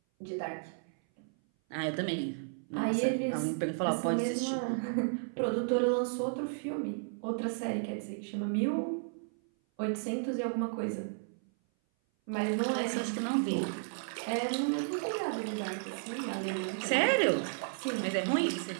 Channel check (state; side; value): silent; left; 56 dB below the other